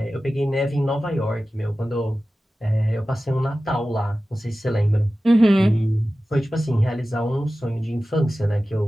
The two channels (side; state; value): both; normal; correlation 0.95